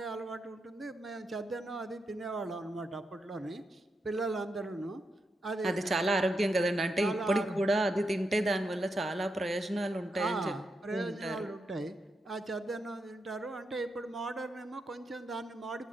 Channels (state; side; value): normal; both; correlation 0.84